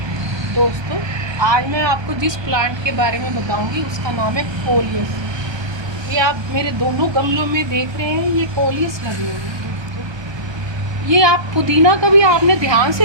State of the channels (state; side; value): late; left; 1.3 ms